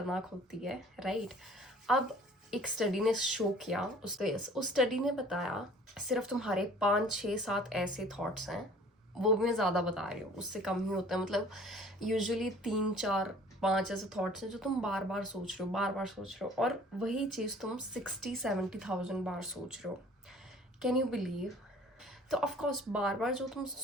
होती है, राइट? अब एक स्टडी ने शो किया, उस स्टडी ने बताया सिर्फ तुम्हारे 5-6-7 ऐसे थॉट्स हैं, वो भी मैं ज़्यादा बता रही हूँ, उससे कम ही होता है। मतलब यूजुअली 3-4-5 ऐसे थॉट्स हैं जो तुम बार बार सोच रहे हो, बार बार सोच रहे हो, और वही चीज़ तुम 60-70,000 बार सोच रहे हो। Can you believe? तो ऑफकोर्स बार बार जो तुम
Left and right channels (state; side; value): normal; both; correlation 0.51